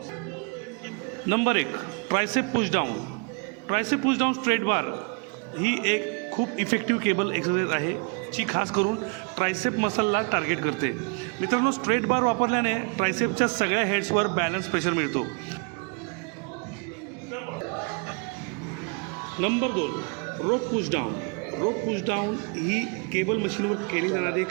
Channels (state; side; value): quieter; left; 35.0 dB